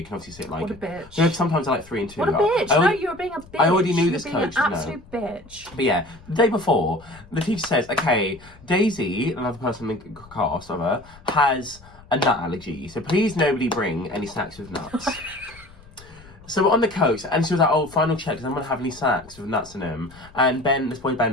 can obviously sit like... What a bitch. You know, sometimes I like 3 and 2. What a bitch. No, you're being a bitch. I already knew this coach. You're being an absolute bitch. But yeah, the day before, the teacher says, okay, Daisy, another person in the cast of her, has a nut allergy. So please nobody bring any snacks with nuts. So we're on the coach, and she was like, oh, final check, does anyone have any snacks with nuts in them? And this boy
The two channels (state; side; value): noise; left; rumble, 22 dB below the sound